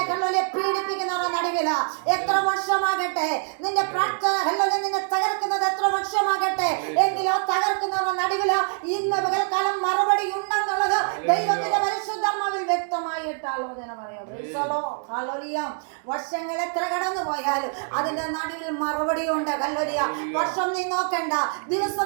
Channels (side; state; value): left; silent; 62 dB below the other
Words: ഹല്ലേലൂയ പീഡിപ്പിക്കുന്നവരുടെ നടുവിൽ എത്ര വർഷമാകട്ടെ, നിന്റെ പ്രാർത്ഥന ഹല്ലേലൂയ നിന്നെ തകർക്കുന്നത് എത്ര വർഷമാകട്ടെ, എങ്കിലോ തകർക്കുന്നവരുടെ നടുവിൽ ഇന്ന് പകൽക്കാലം മറുപടി ഉണ്ടെന്നുള്ളത് ദൈവത്തിന്റെ പരിശുദ്ധാത്മാവിൽ വ്യക്തമായിട്ട് ആലോചന പറയാം. Price the Lord. ഹല്ലേലൂയ. വർഷങ്ങൾ എത്ര കടന്നു പോയാലും അതിന്റെ നടുവിൽ മറുപടി ഉണ്ട്. ഹല്ലേലൂയ. വർഷം നീ നോക്കണ്ട,